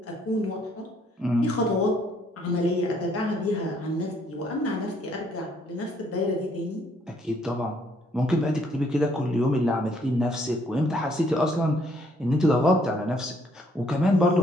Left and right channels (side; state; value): both; normal; correlation 0.66